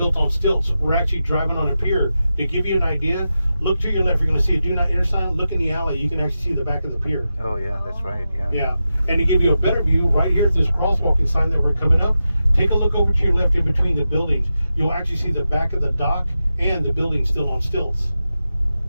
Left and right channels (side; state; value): both; inverted; correlation -0.90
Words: on stilts. We're actually driving on a pier. To give you an idea, look to your left. You're going to see a do not enter sign. Look in the alley. You can actually see the back of the pier. Oh yeah, that's right. Yeah. Yeah. And to give you a better view, right here at this crosswalking sign that we're coming up, take a look over to your left in between the buildings. You'll actually see the back of the dock and the building still on stilts.